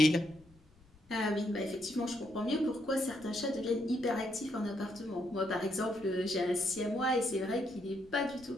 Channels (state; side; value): noise; left; rumble, 27 dB below the sound